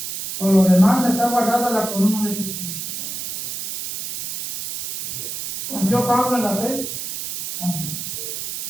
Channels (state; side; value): noise; right; hiss, 6 dB below the sound